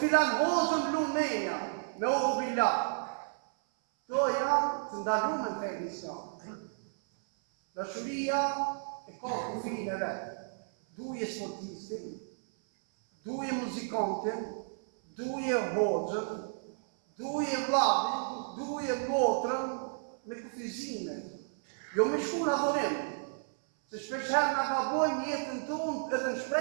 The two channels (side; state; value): left; silent; 56 dB below the other